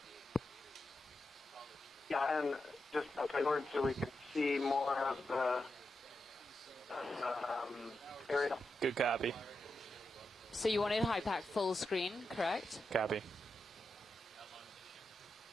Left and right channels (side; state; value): both; normal; correlation 0.88